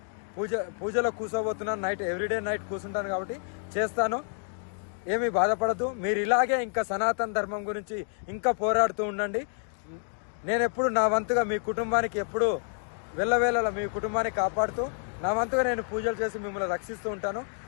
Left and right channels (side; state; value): right; silent; 57 dB below the other